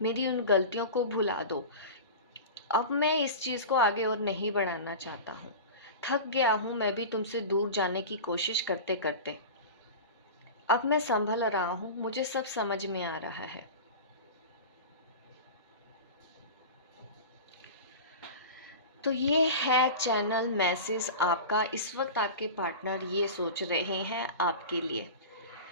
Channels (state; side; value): inverted; both; correlation -0.30